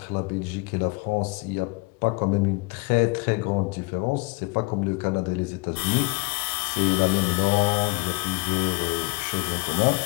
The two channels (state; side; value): quieter; right; 27.1 dB